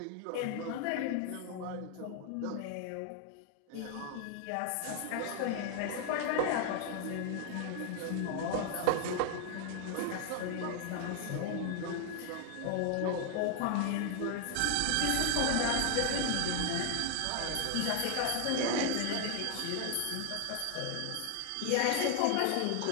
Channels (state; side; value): different; both; correlation 0.00